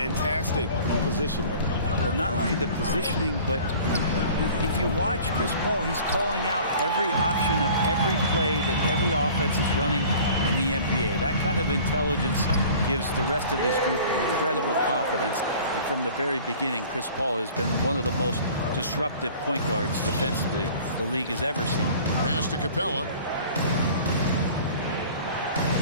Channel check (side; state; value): both; inverted; correlation -0.46